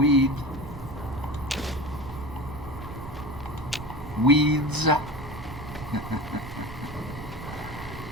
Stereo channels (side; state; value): right; noise; rumble, 12 dB below the sound